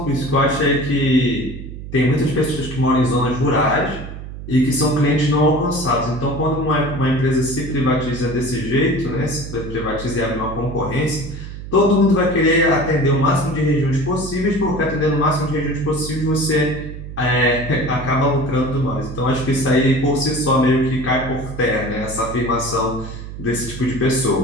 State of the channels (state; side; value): noise; right; hum, 10 dB below the sound